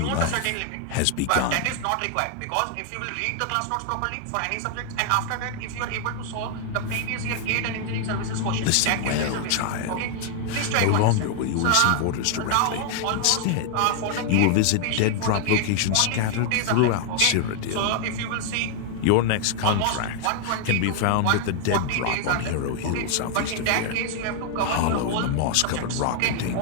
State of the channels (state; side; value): different; both; correlation 0.00